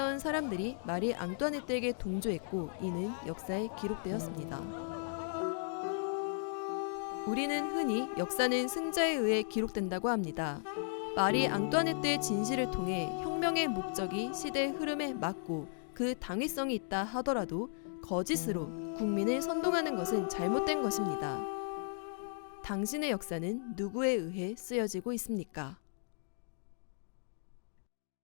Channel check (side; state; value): right; silent; digital silence